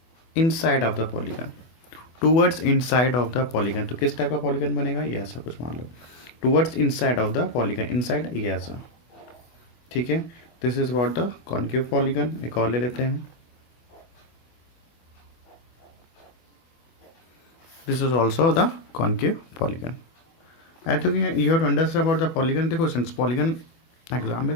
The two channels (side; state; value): right; late; 24 ms